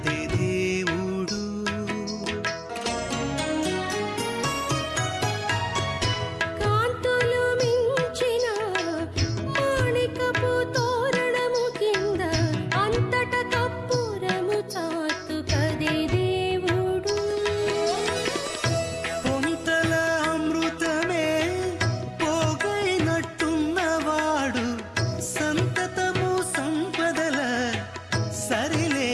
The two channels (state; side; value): identical; both; correlation 1.00